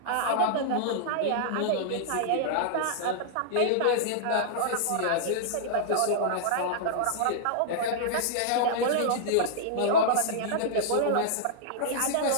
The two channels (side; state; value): both; different; correlation -0.02